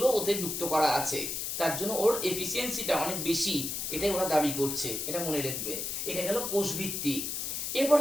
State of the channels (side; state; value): left; noise; hiss, 3 dB below the sound